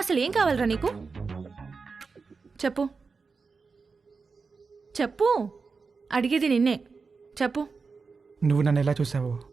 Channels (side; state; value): left; quieter; 4.7 dB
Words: ఏం కావాలరా నీకు? చెప్పు చెప్పు, అడిగేది నిన్నే. చెప్పు. నువ్వు నన్ను ఎలా చూసావో